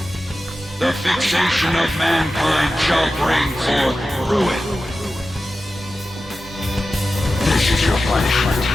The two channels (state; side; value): normal; both; correlation 0.93